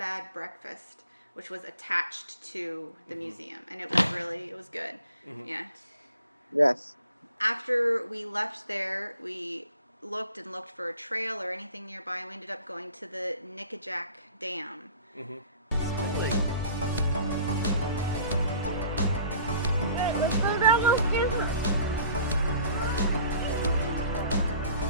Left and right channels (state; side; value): inverted; both; correlation -0.49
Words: Breakfast, which was attached to the museum, and it was good. Yeah. Yes. After we left there, we looked for a trail or anything nearby, and we ended up going to the Nickajack Dam. Really? Let's go down those stairs.